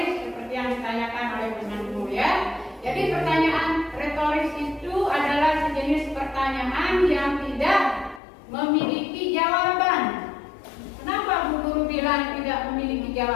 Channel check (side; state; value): right; drops out; at 8.2 s